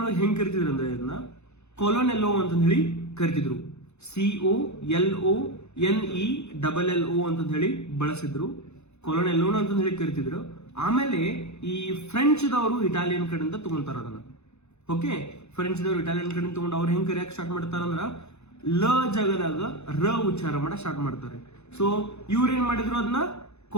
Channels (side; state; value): right; late; 0.81 ms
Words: ಒಳಗೆ ಹೆಂಗ್ ಕರಿತಿದ್ರು ಅಂದ್ರೆ ಇದನ್ನ ಕೊಲೊನೆಲ್ಲೋ ಅಂತ ಹೇಳಿ ಕರಿತಿದ್ರು. COLONELLO ಅಂತ ಹೇಳಿ ಬಳಸಿದ್ರು, ಕೊಲೊನೆಲ್ಲೋ ಅಂತ ಹೇಳಿ ಕರಿತಿದ್ರು. ಆಮೇಲೆ ಈ ಫ್ರೆಂಚ್ ದವರು ಇಟಾಲಿಯನ್ ಕಡೆಯಿಂದ ತಗೊಂತಾರ ಅದನ್ನ. ಓಕೆ, ಫ್ರೆಂಚ್ ದವರು ಇಟಾಲಿಯನ್ ಕಡೆಯಿಂದ ತಗೊಂಡು ಅವ್ರು ಹೆಂಗ್ ಕರಿಯಕ್ ಸ್ಟಾರ್ಟ್ ಮಾಡ್ತಾರ ಅಂದ್ರ ಲ ಜಾಗದಾಗ ರ ಉಚ್ಚಾರ ಮಾಡ ಸ್ಟಾರ್ಟ್ ಮಾಡ್ತಾರೆ. ಸೊ ಇವ್ರ ಏನ್ ಮಾಡಿದ್ರು ಅದನ್ನ